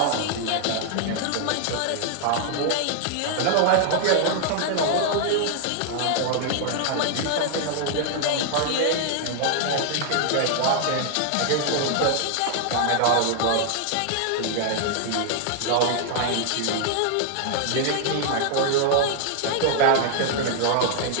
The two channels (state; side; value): different; both; correlation 0.00